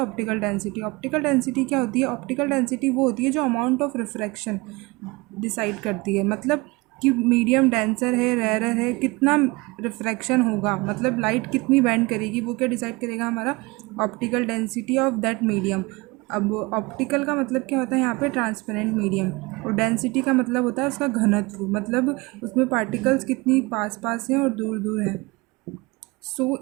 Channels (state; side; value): quieter; left; 24.3 dB